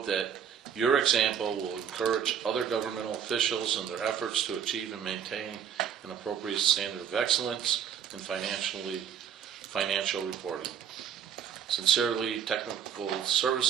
that your example will encourage other governmental officials in their efforts to achieve and maintain an appropriate standard of excellence in financial reporting. Sincerely, Technical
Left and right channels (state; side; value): quieter; left; 8.4 dB